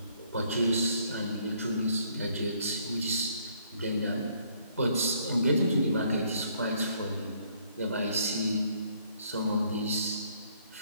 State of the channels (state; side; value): inverted; both; correlation -0.65